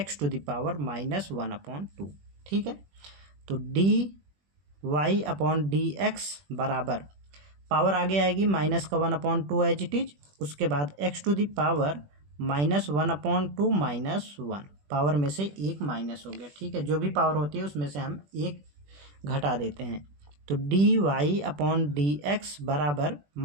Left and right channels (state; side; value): late; left; 21 ms